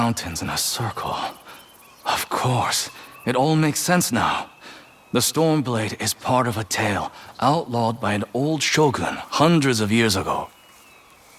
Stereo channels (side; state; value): both; identical; correlation 1.00